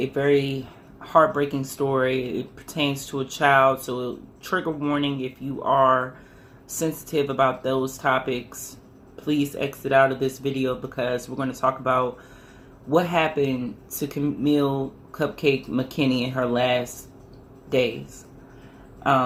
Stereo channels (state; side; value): identical; both; correlation 1.00